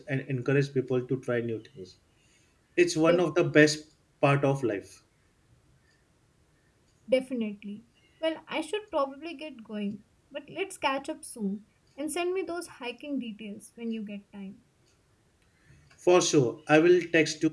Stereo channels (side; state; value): both; identical; correlation 1.00